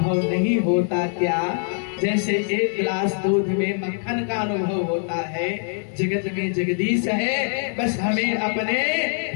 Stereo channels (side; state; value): right; silent; 55 dB below the other